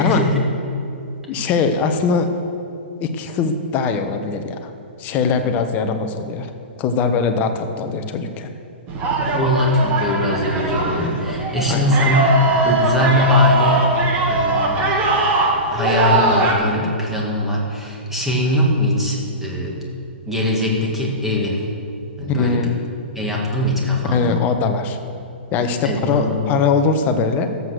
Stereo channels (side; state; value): both; normal; correlation -0.16